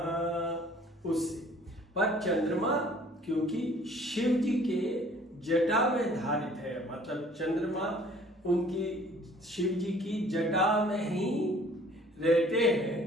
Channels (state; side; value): normal; both; correlation 0.54